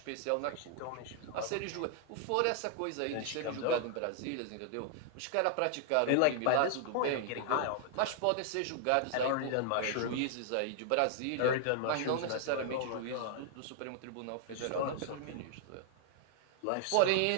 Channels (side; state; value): both; different; correlation -0.01